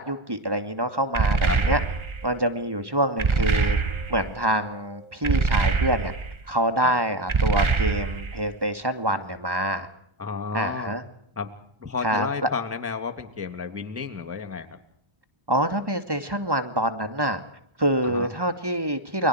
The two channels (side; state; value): left; late; 1.4 ms